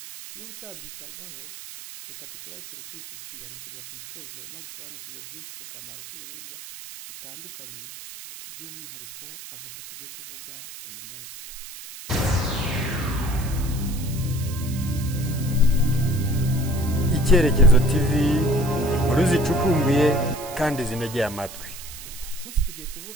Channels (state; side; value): noise; right; hiss, 14 dB below the sound